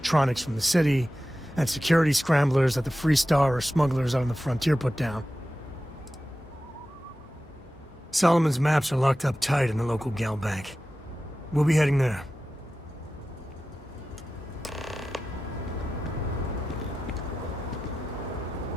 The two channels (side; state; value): both; normal; correlation 0.93